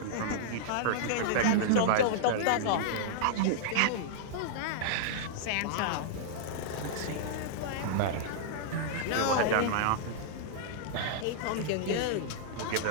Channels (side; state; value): both; different; correlation -0.02